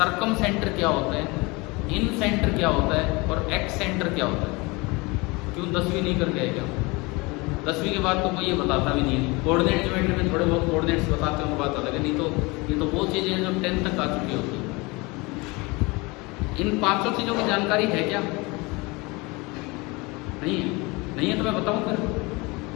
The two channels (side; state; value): right; quieter; 25.4 dB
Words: सेंटर क्या होता है, इन सेंटर क्या होता है, और एक्स सेंटर क्या होता है? क्यों 10वीं नहीं करके आए क्या? 10वीं के बाद तो कोई ये बताता भी नहीं है। कोऑर्डिनेट ज्योमेट्री में थोड़े बहुत कोऑर्डिनेट्स बताते हैं, बात अलग है, नहीं तो ये तो वो चीज़ें हैं जो 10th तक आ चुकी होती है। इन 5 चीज़ों की जानकारी है क्या? नहीं है? नहीं है तो मैं बताऊँ फिर?